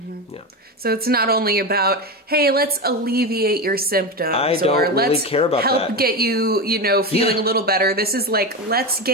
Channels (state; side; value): normal; both; correlation 0.18